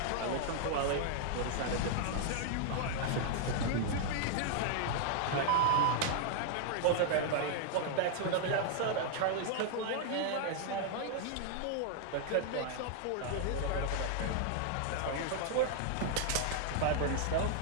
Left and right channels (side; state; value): both; different; correlation -0.01